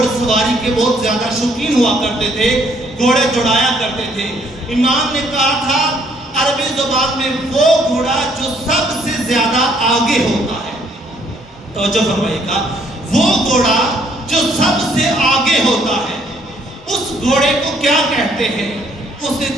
سواری کے بہت زیادہ شوقین ہوا کرتے تھے، گھوڑے دوڑایا کرتے تھے۔ امام نے کہا تھا عربی زبان میں وہ گھوڑا جو سب سے زیادہ آگے ہوتا ہے، توجہ فرمائیے گا، وہ گھوڑا جو سب سے آگے ہوتا ہے اس گھوڑے کو کیا کہتے ہیں؟ اس نے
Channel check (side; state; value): both; normal; correlation 0.66